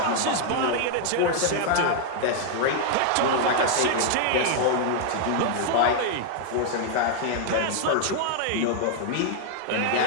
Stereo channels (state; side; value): different; both; correlation 0.00